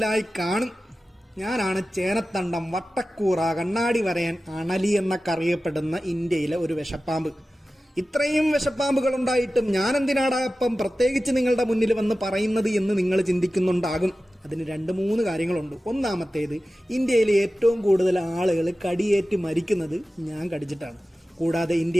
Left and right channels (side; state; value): both; normal; correlation 0.95